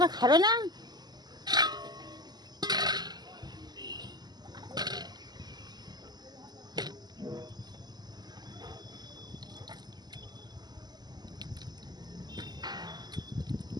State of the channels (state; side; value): late; left; 0.20 ms